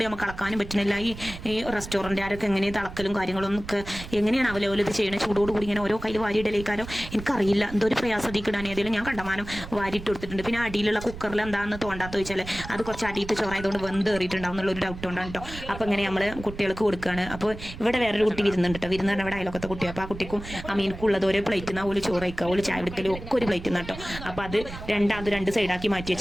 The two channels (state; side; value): noise; right; rumble, 12 dB below the sound